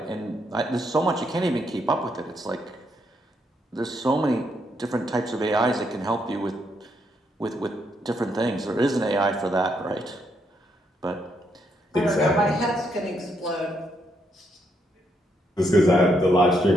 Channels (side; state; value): both; normal; correlation 0.76